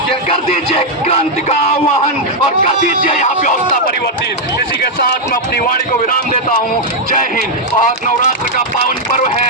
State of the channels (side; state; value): both; normal; correlation -0.01